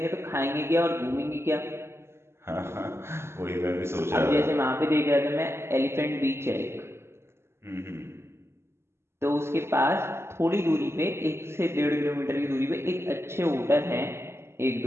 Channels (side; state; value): left; late; 0.12 ms